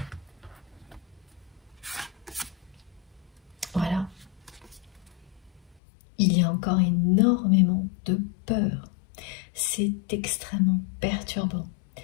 Voilà. Il y a encore énormément de peur. C'est extrêmement perturbant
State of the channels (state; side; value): drops out; right; at 5.8 s